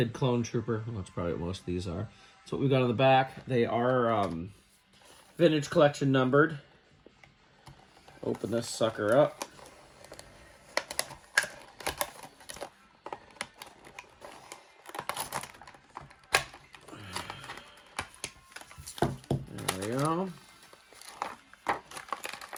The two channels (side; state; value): both; identical; correlation 1.00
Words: clone trooper. Well, that's probably what most of these are. That's what we've got on the back. They are vintage collection numbered. Open this sucker up. There we go.